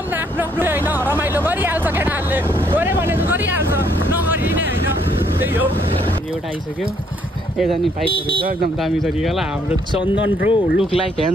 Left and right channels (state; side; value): normal; both; correlation 0.69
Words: न आफ्नो आफ्नो होइन, रमाइलो गरिहाल्छ केटाहरूले। गऱ्यो भने त गरिहाल्छ, नगरिने होइन। त्यही हो। एउटा आइसक्यो, यता नि बाइकहरू छ एकदम दामी तरिकालाई। हाम्रो चन्दन ब्रो लुक लाइक